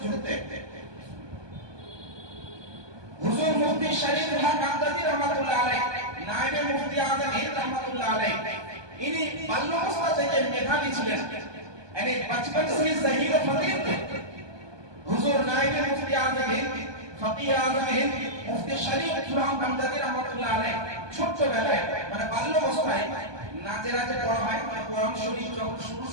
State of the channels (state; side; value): late; left; 1.2 ms